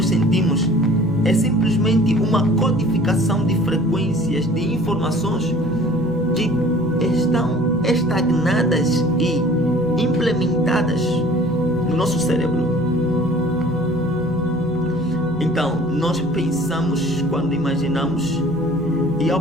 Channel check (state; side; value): noise; right; hum, 18 dB below the sound